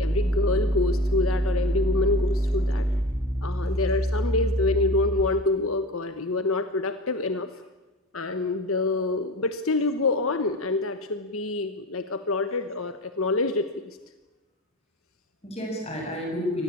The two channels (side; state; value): both; normal; correlation 0.31